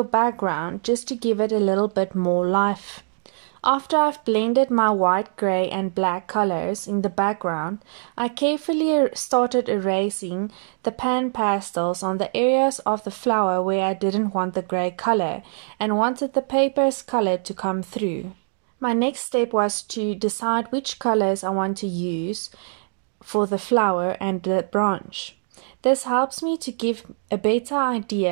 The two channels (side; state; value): left; silent; digital silence